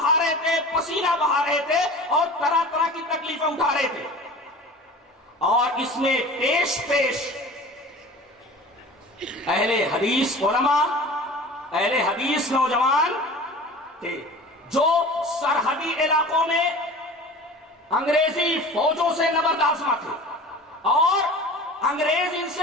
رہے تھے، پسینہ بہا رہے تھے، اور طرح طرح کی تکلیفیں اٹھا رہے تھے۔ اور اس میں پیش اہل حدیث علماء، اہل حدیث نوجوان تھے جو سرحدی علاقوں میں انگریزی فوجوں سے نبردآزما تھے، اور انگریز ان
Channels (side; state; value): both; normal; correlation 0.39